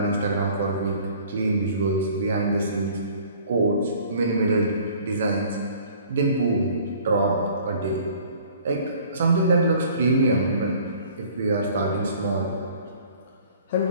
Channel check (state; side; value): inverted; both; correlation -0.52